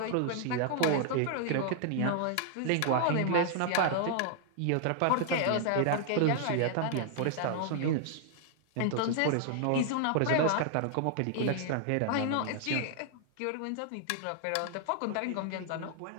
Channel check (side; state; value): both; different; correlation 0.00